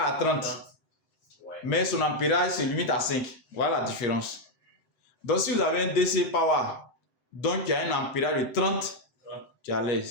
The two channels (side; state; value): right; late; 7.8 ms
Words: 30. Mais son ampérage se limite à 5. Voilà la différence. Donc, si vous avez un DC Power, donc il y a un ampérage de 30, tu es à